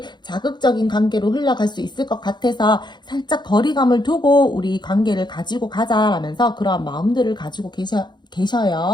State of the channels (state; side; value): late; right; 0.21 ms